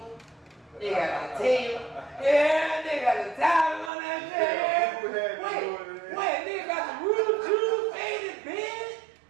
They got the table. Yeah, they got the towel on that bed. Wait, nigga got the real Jew faded bed.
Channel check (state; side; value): drops out; left; at 3.9 s